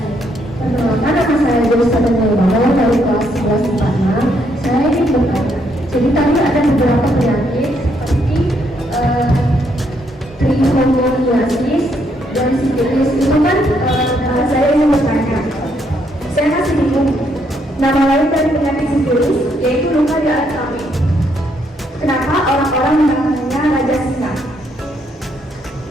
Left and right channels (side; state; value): both; normal; correlation 0.73